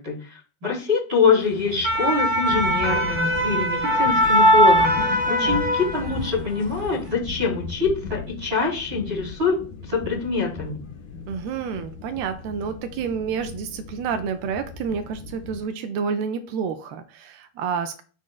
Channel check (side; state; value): left; late; 13 ms